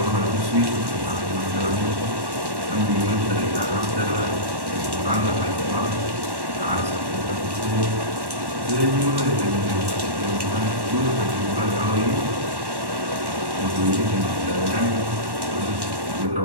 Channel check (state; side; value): late; left; 1.1 ms